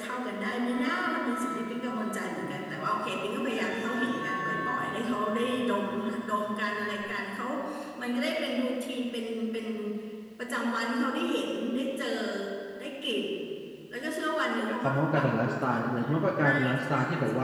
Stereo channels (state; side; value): identical; both; correlation 1.00